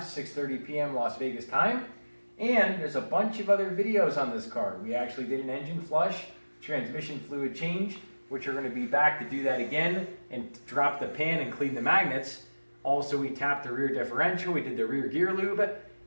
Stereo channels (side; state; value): both; inverted; correlation -1.00